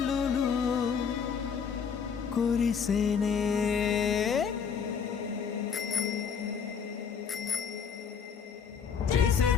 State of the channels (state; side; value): quieter; right; 6.7 dB